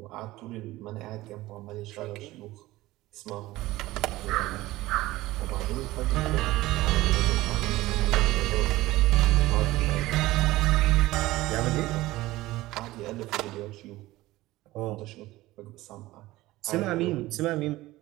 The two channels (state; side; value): quieter; left; 17.9 dB